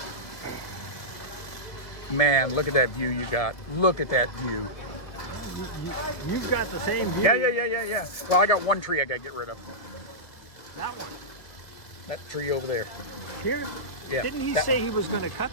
Man, look at that view you got. Look at that view. You've got the same view. Yeah. Well, I got one tree I got to get rid of. That one. That tree over there. Here? Yeah. Didn't he that say one. he was going to cut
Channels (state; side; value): late; right; 1.9 ms